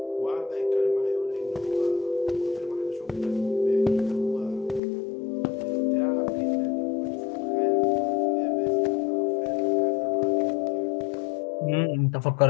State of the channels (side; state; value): right; drops out; at 4.8 s